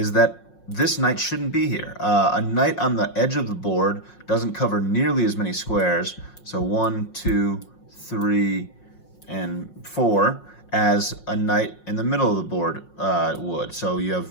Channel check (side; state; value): right; late; 5.5 ms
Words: that this knight shouldn't be here. A knight on the edge of the board doesn't cover nearly as many squares, so 1, 2, 3, and 4, as a knight in the middle of the board would. So you